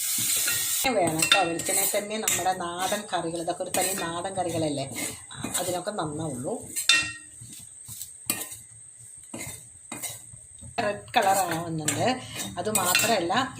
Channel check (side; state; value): both; identical; correlation 1.00